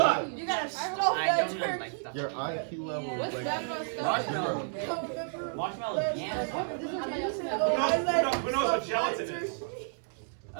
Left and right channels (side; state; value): left; silent; digital silence